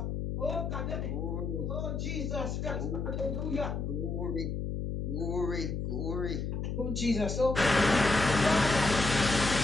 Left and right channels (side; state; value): left; noise; hum, 3 dB below the sound